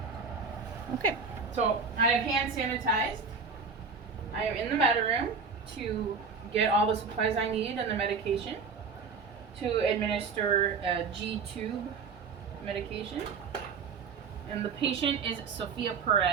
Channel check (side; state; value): left; quieter; 5.2 dB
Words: okay. So I have hand sanitized. I am in the med room to get all the supplies I need and the medication to administer a G-tube medication. And the patient is Sophia